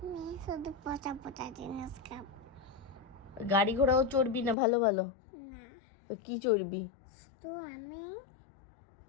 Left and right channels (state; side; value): drops out; right; at 4.5 s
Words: শুধু পচা পচা জিনিস খাবো। গাড়ি ঘোড়াও চড়বি না ভালো ভালো? না, তো কি চড়বি? তো আমি